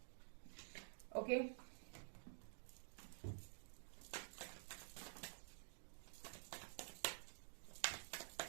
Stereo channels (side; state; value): left; silent; digital silence